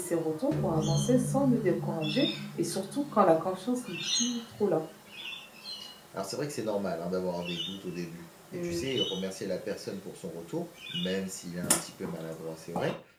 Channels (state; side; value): identical; both; correlation 1.00